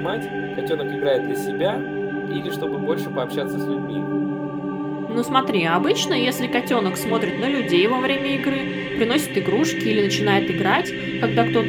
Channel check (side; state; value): both; identical; correlation 1.00